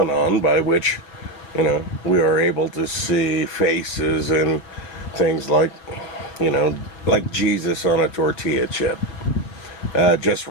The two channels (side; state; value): right; late; 5.7 ms